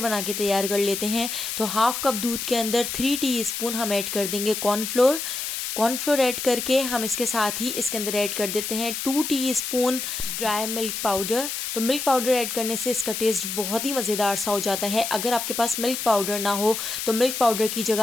बना के तैयार कर लेते हैं। तो हाफ कप दूध के अंदर 3 टीस्पून हम ऐड कर देंगे कॉर्नफ्लोर ऐड करके हम इसके साथ ही इसके अंदर ऐड कर देते हैं 2 टीस्पून ड्राई मिल्क पाउडर। तो मिल्क पाउडर ऐड करने से इसका टेस्ट बहुत ही मज़ेदार सा हो जाता है। अगर आपके पास मिल्क पाउडर ना हो तो मिल्क पाउडर की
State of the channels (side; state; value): left; noise; hiss, 4 dB below the sound